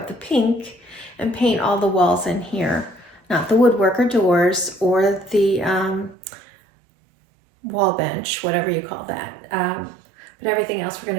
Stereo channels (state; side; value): drops out; left; at 6.2 s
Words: the pink and paint all the walls in here. Not the woodwork or doors or the wall bench, whatever you call that. But everything else we're